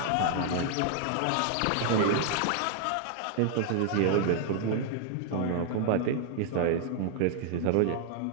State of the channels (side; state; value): both; different; correlation 0.00